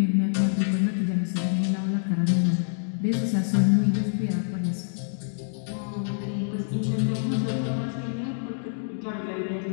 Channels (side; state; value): right; silent; digital silence